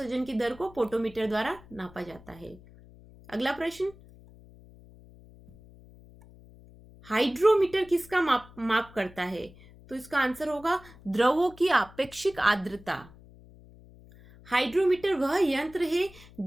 की दर को पोटोमीटर द्वारा नापा जाता है। अगला प्रश्न, हाइड्रोमीटर किसका माप करता है? तो इसका आंसर होगा द्रवों की आपेक्षिक आर्द्रता। हाइड्रोमीटर वह यंत्र है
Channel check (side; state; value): left; noise; hum, 22 dB below the sound